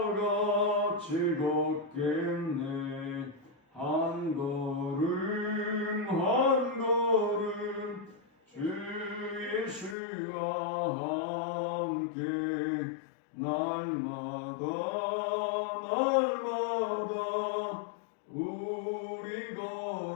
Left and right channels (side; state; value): right; drops out; at 10.0 s